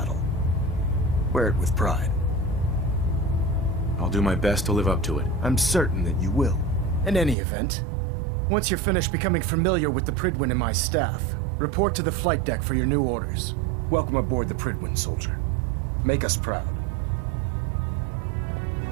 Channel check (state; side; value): drops out; left; at 7.4 s